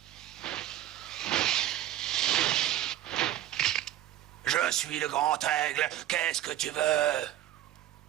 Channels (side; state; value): left; quieter; 12.9 dB